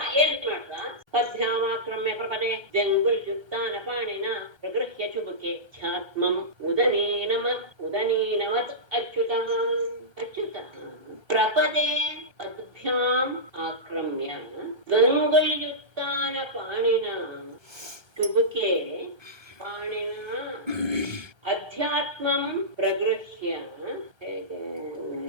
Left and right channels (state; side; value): late; left; 1.3 ms